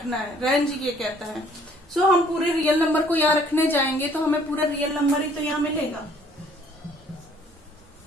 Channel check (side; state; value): both; normal; correlation 0.59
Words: है, रेंज ये कहता है। हम पूरे रियल नंबर को यहाँ रखने जाएंगे तो हमें पूरा रियल नंबर ही तो यहाँ मिलेगा।